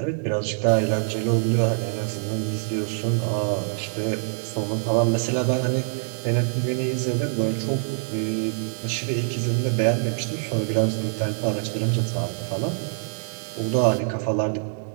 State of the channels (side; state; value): left; silent; digital silence